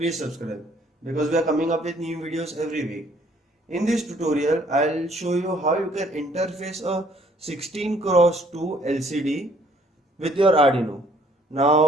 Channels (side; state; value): both; normal; correlation 0.61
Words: subscribe because we are coming up with new videos every week. In this tutorial, I'll show you how you can interface a 16x2 LCD with your Arduino.